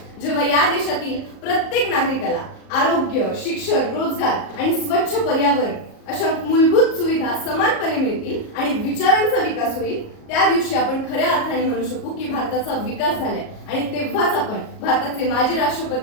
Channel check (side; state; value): right; late; 38 ms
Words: जेव्हा या देशातील प्रत्येक नागरिकाला आरोग्य, शिक्षण, रोजगार आणि स्वच्छ पर्यावरण अशा मूलभूत सुविधा समानपणे मिळतील आणि विचारांचा विकास होईल, त्या दिवशी आपण खऱ्या अर्थाने म्हणू शकू की भारताचा विकास झालाय. आणि तेव्हाच आपण भारताचे माजी